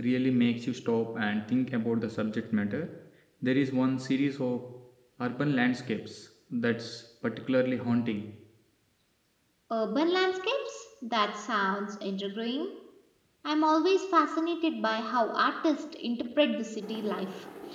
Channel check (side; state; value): both; identical; correlation 1.00